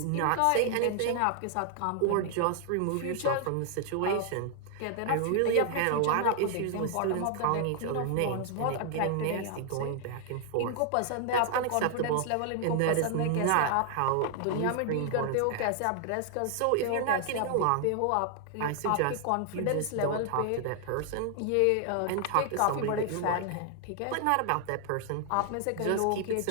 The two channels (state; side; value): different; both; correlation 0.00